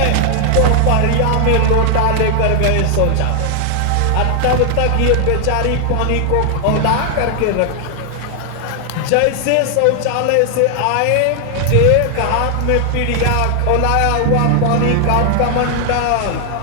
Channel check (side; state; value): both; different; correlation 0.00